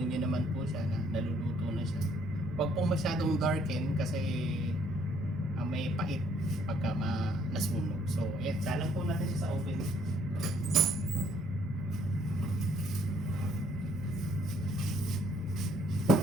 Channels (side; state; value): both; normal; correlation 0.65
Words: nyo naman po siya na naluluto na siya. Huwag pong masyadong darken kasi may pait pagka nasunog. So ayan, salang po natin siya sa oven.